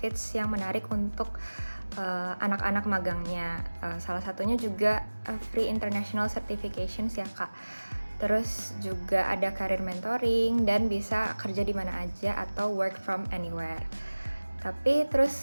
yang menarik untuk anak-anak magangnya. Salah satunya juga free international certifications ya, Kak. Terus juga ada career mentoring dan bisa kerja di mana aja atau work from anywhere. Tapi terus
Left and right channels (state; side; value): inverted; both; correlation -1.00